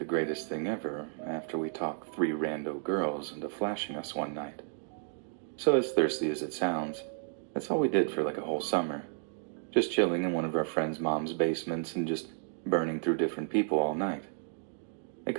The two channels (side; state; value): left; silent; digital silence